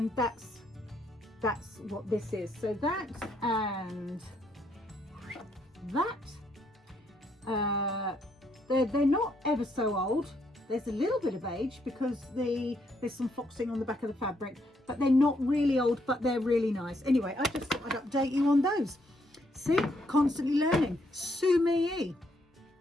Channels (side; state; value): both; normal; correlation 0.73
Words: that's what this is. So that and that, they're not ever so old. There's a little bit of age because there's some foxing on the back of the fabric, but they're not really old, but they're really nice. Anyway, I just thought I'd update you on those. See, constantly learning. Sumi.